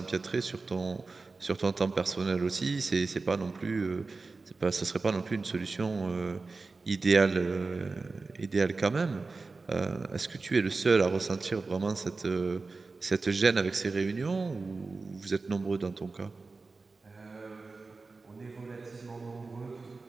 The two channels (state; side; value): quieter; left; 3.9 dB